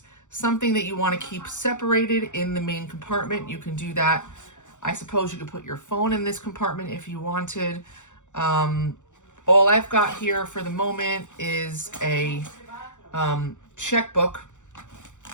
something that you want to keep separated in the main compartment, you can do that. I suppose you could put your phone in this compartment if you wanted. All I've got here for the moment is a checkbook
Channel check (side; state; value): right; late; 0.85 ms